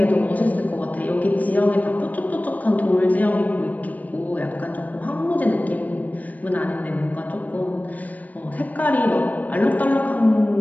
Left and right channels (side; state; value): right; late; 0.075 ms